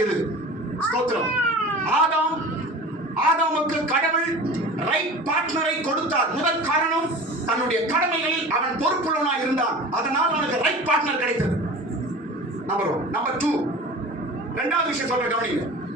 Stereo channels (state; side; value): normal; both; correlation 0.37